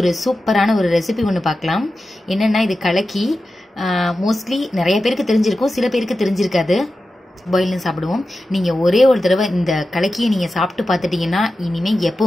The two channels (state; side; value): normal; both; correlation 0.92